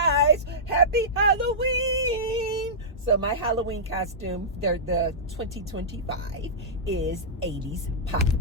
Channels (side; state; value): both; normal; correlation -0.14